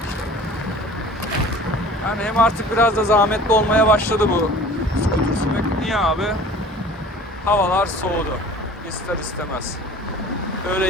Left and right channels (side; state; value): both; normal; correlation 0.45